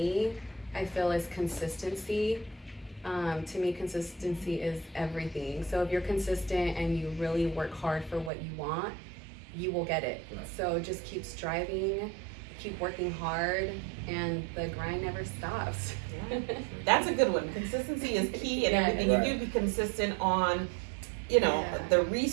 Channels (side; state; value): left; drops out; at 8.3 s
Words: I feel, is consistency. To me, consistency is everything. So if you're consistent and you really work hard for what you want, you will get it. Right. So just keep striving, keep working hard, and the grind never stops. Yeah. That's a good one. Consistency is key in Yeah. everything. Right. You do be consistent on, you know, Yeah. the